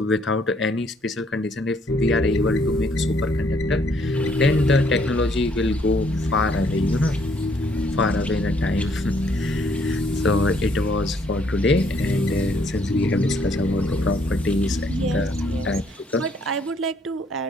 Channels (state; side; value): normal; both; correlation 0.67